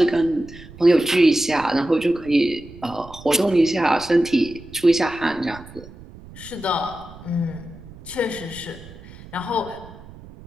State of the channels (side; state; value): right; noise; rumble, 18 dB below the sound